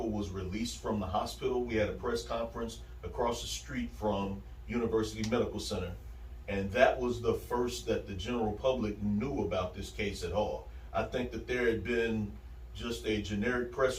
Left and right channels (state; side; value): identical; both; correlation 1.00